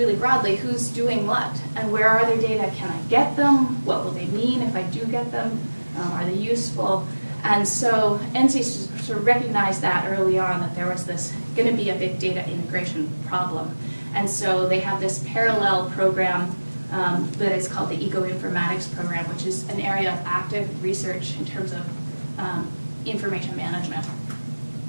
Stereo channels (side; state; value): both; inverted; correlation -1.00